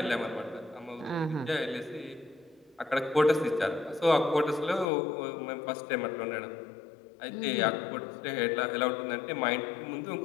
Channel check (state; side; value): drops out; right; at 4.9 s